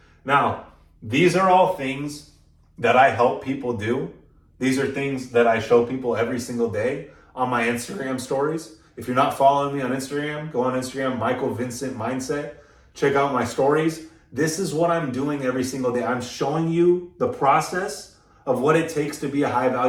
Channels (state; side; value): identical; both; correlation 1.00